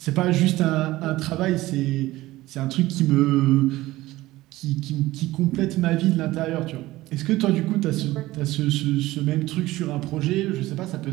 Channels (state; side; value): quieter; left; 17.6 dB